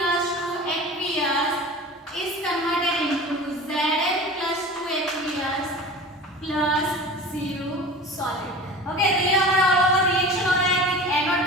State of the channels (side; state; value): both; normal; correlation 0.36